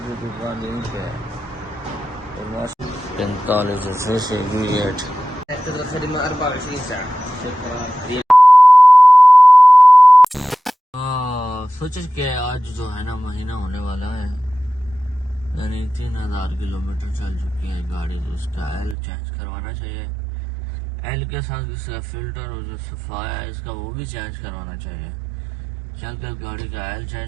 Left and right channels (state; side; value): drops out; left; at 18.9 s